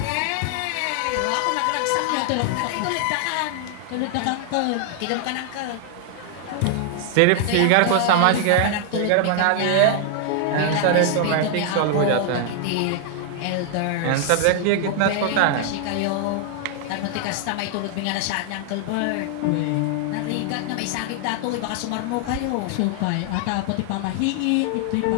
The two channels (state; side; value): different; both; correlation 0.00